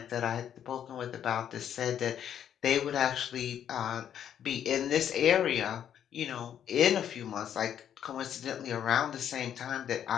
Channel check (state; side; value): quieter; right; 9.6 dB